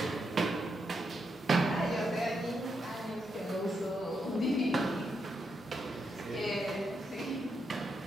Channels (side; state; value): both; normal; correlation 0.82